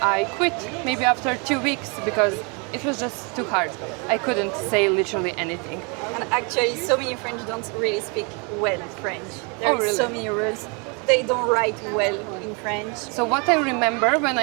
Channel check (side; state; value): left; quieter; 33.2 dB